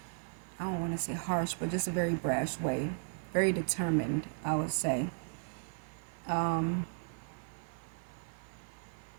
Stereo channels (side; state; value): left; silent; digital silence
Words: I don't want to say harsh, but just a very brash way. Very determined, I would say.